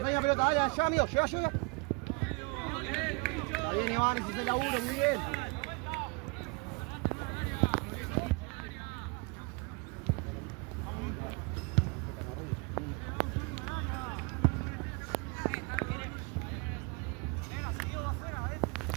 pelota, dale, allá, amigo, llega. Está bien, Iván, ese es el laburo, muy bien.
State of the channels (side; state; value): left; quieter; 29.9 dB